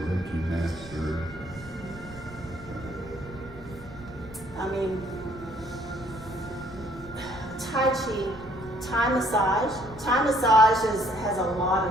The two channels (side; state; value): right; noise; rumble, 18 dB below the sound